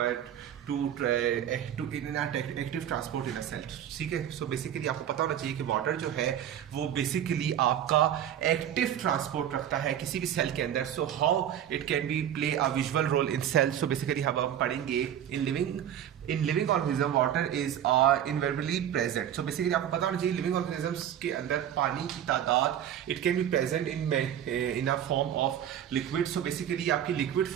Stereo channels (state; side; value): quieter; left; 10.3 dB